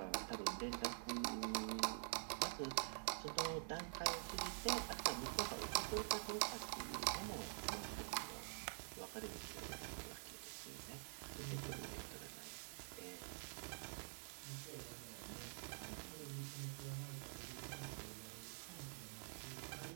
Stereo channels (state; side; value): silent; left; digital silence